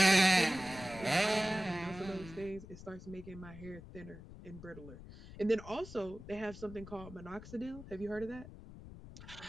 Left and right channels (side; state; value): left; noise; rumble, 15 dB below the sound